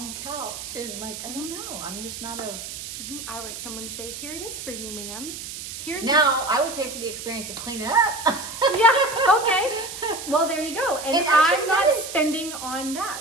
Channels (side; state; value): right; noise; hiss, 9 dB below the sound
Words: couch. And I don't know, I'm just not a... I like someone to say, here it is for you, ma'am. I would pay for the experience of cleaning up. Yeah, okay. Well, there you go. And I'm not spending on